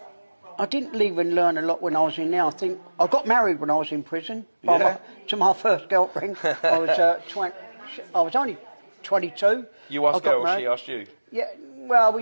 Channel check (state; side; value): inverted; both; correlation -1.00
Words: I didn't even learn a lot when I was in there. I think I got married when I was in prison to my first girlfriend. I was only 22. You asked her or she asked you? Yeah, well, we